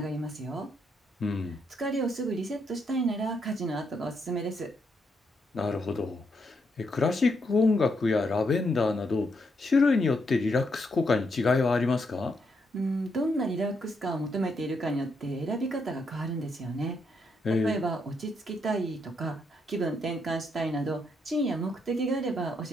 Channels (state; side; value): normal; both; correlation 0.78